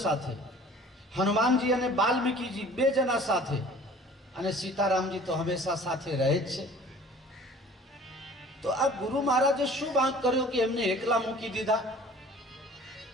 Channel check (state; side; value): normal; both; correlation 0.48